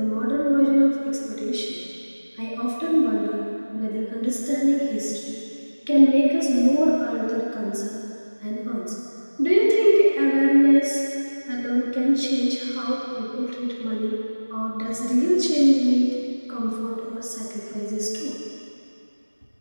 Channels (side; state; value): both; inverted; correlation -1.00